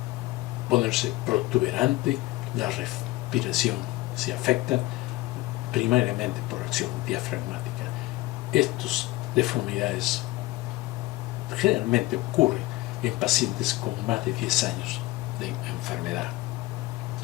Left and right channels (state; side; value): quieter; right; 19.4 dB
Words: ponerse protuberante, la respiración se afecta primariamente por acción diafragmática. Estas deformidades generalmente ocurren en pacientes con más de 10 años de enfermedad.